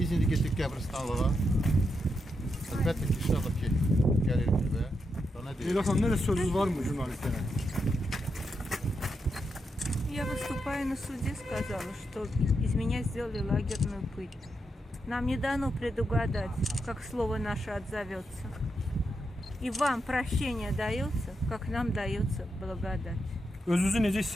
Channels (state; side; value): normal; both; correlation 0.84